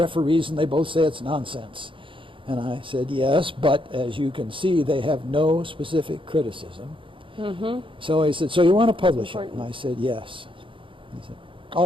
and they both say it's nonsense. And I said, yes, but as you can see, they have no specific criticism. So he said, so you want to publish it? And I said, yes. He said,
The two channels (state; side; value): late; left; 0.25 ms